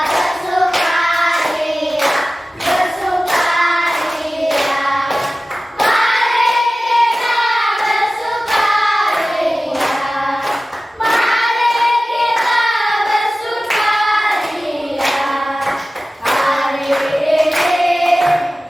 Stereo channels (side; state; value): both; normal; correlation 0.96